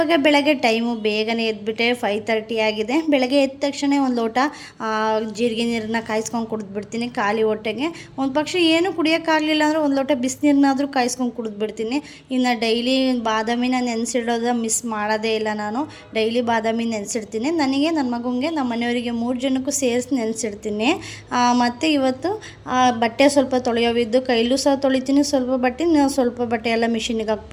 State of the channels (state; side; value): identical; both; correlation 1.00